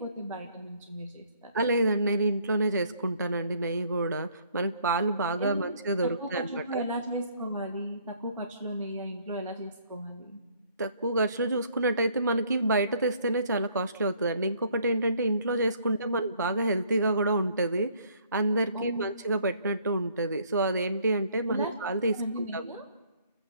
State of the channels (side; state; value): both; inverted; correlation -0.62